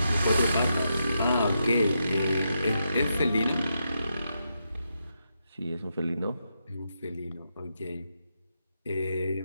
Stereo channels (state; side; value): inverted; both; correlation -0.84